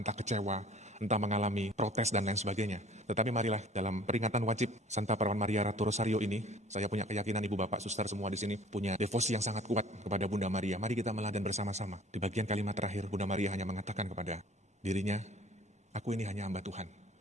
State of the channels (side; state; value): both; normal; correlation 0.50